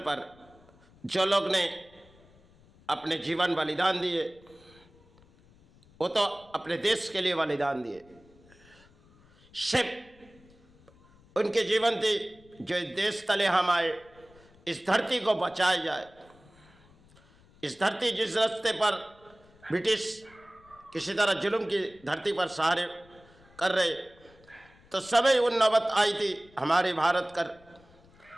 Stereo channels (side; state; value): left; noise; rumble, 27 dB below the sound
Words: पर जो लोग ने अपने जीवन बलिदान दिए वो तो अपने देश के लिए बलिदान दिए। सिर्फ उनके जीवन थी जो इस देश तले हम आए, इस धरती को बचाया जाए। इस धरती जिस रास्ते पर ब्रिटिश किसी तरह जुल्म की धरती पर सहारे कर रहे, तो समय उन नौबत आई थी हमारे भारत कर